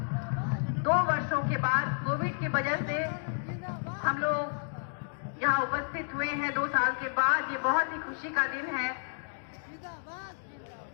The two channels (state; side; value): silent; right; digital silence